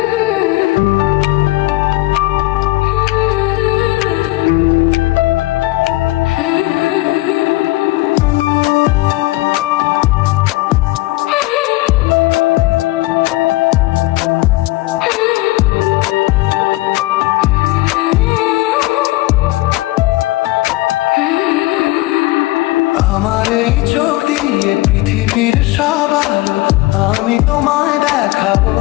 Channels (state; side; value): quieter; right; 19.5 dB